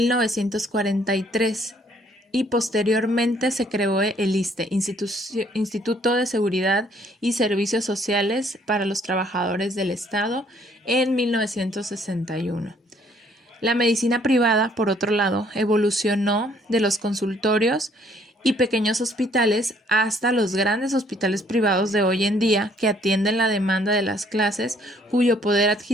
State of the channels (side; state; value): both; normal; correlation 0.64